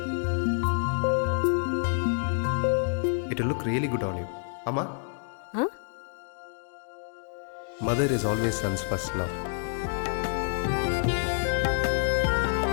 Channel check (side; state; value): right; silent; 59 dB below the other